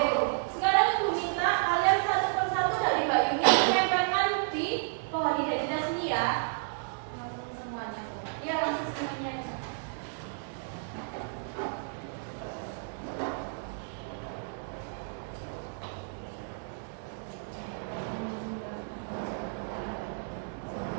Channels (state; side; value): silent; left; digital silence